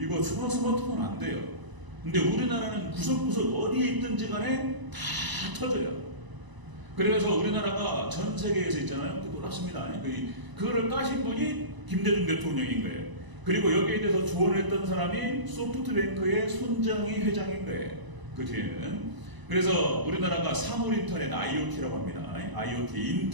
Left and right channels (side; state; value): left; late; 1.0 ms